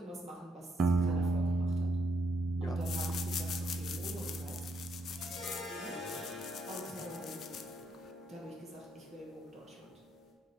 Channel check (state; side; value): normal; both; correlation 0.75